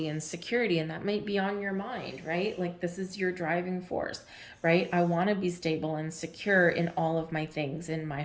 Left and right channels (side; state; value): both; identical; correlation 1.00